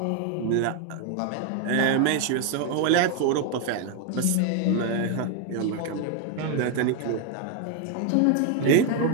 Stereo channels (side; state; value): both; different; correlation 0.01